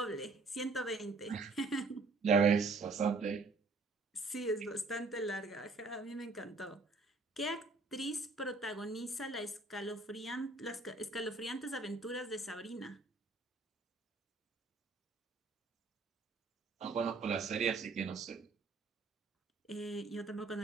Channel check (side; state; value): left; quieter; 3.8 dB